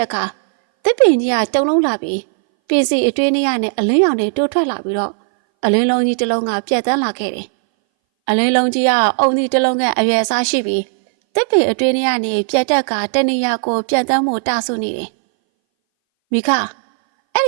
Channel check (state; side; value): silent; left; 62 dB below the other